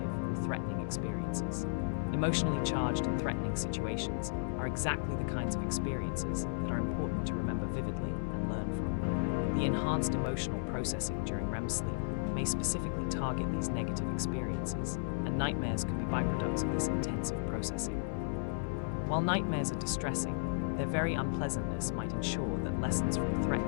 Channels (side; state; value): right; silent; 55 dB below the other